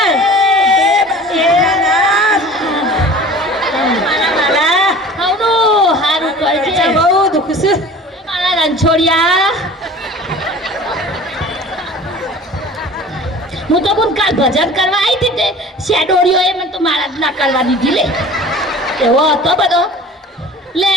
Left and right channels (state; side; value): normal; both; correlation 0.42